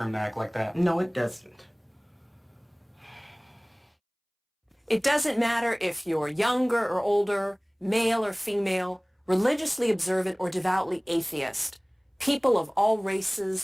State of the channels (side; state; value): both; identical; correlation 1.00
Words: him to act like that. No, it doesn't. It doesn't matter if you're younger or older, male or female, religiously observant or devoutly atheist. People of all